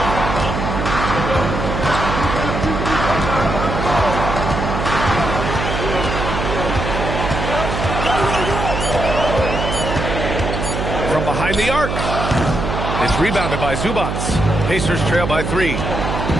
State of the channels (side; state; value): right; noise; hum, 3 dB below the sound